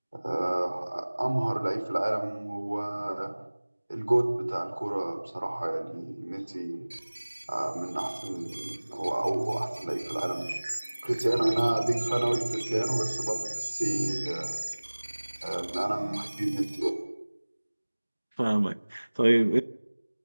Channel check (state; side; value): inverted; both; correlation -1.00